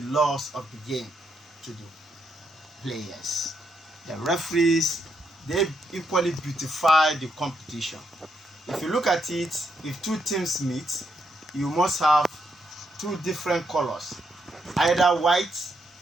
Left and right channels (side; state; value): both; normal; correlation 0.78